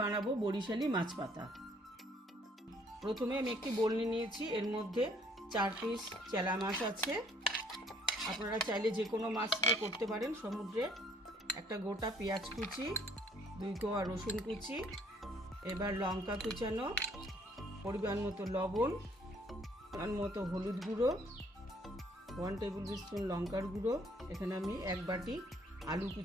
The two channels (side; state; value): both; normal; correlation 0.63